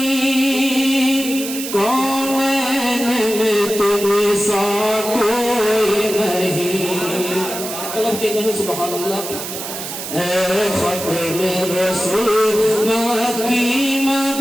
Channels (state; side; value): noise; right; hiss, 7 dB below the sound